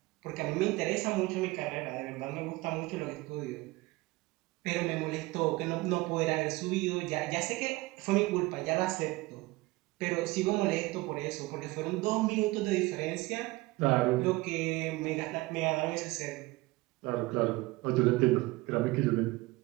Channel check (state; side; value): quieter; left; 21.3 dB